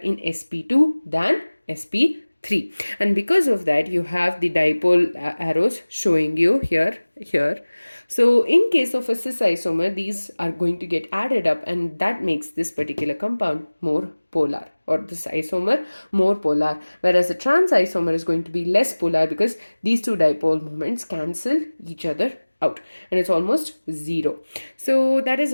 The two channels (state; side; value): inverted; both; correlation -1.00